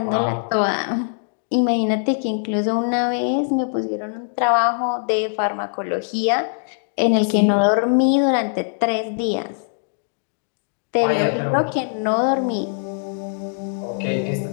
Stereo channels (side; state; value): right; silent; digital silence